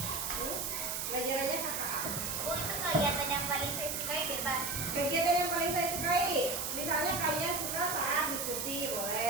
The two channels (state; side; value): noise; right; hiss, 2 dB below the sound